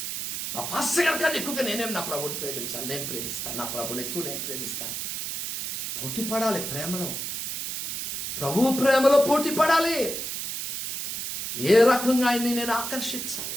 నా పాస్టర్ గారి కన్నా ఎక్కువగా నేనేం నా ప్రభుని ప్రేమించాలి. నేను ప్రేమిస్తాను, నా ప్రభుని ఎక్కువ నేను ప్రేమిస్తాను. పోటీ పడాలి ప్రేమలో, ప్రభువు ప్రేమలో పోటీ పడాలి. ఏ రకంగా ఆయన్ని నేను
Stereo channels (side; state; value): right; noise; hiss, 4 dB below the sound